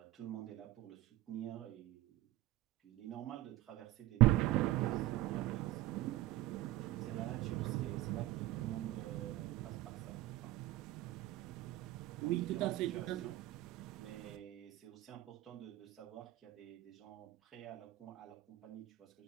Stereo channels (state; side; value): quieter; left; 16.0 dB